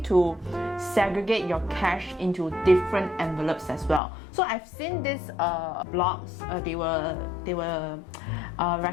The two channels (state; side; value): drops out; right; at 4.0 s